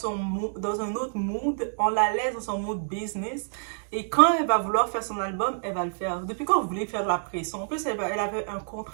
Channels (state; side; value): silent; left; digital silence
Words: un autre mood. On la laisse dans son mood business. Et quand elle va vouloir faire son album, elle va le faire. Depuis quand vous voulez faire de la pression? En plus, elle avait un